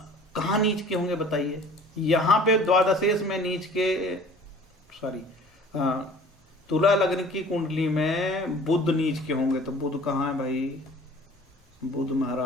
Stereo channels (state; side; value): normal; both; correlation 0.48